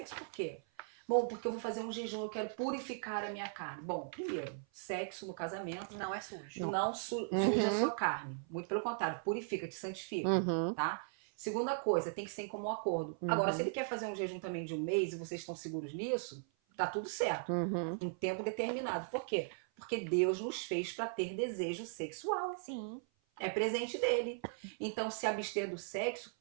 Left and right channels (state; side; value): silent; left; 52 dB below the other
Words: por quê? Bom, porque eu vou fazer um jejum, eu quero purificar a minha carne. Bom, primeiro, sexo no casamento Não é sujo. não suja a sua carne. Muito pelo contrário, purifica, te santifica, Uhum. tá? Segunda coisa, tem que ser em comum acordo. Agora, se ele quer fazer um jejum também de um mês e vocês estão seguros nisso, tá tudo certo. Uhum. Em tempo determinado. Por quê? Porque Deus nos fez para ter desejo sexual. Sim. É presente dele. Então, se abster do sexo